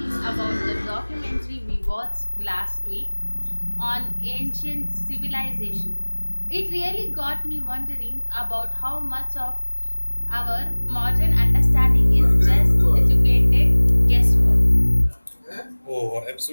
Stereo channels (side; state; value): both; inverted; correlation -1.00